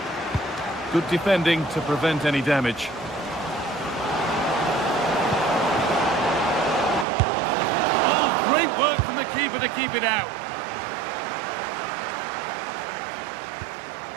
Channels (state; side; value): drops out; left; at 7.1 s